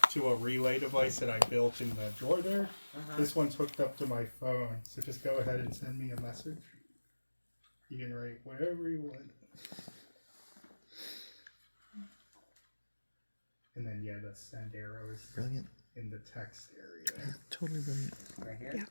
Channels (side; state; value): both; inverted; correlation -1.00